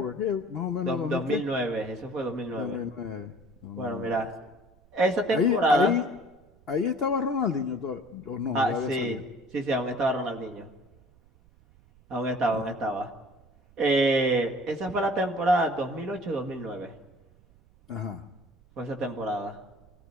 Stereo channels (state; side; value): noise; right; rumble, 28 dB below the sound